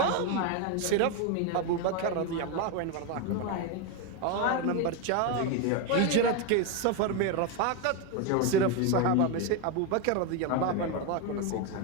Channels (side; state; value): both; different; correlation 0.02